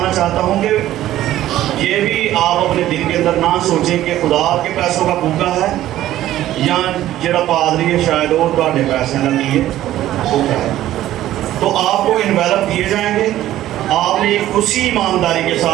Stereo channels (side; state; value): left; quieter; 13.7 dB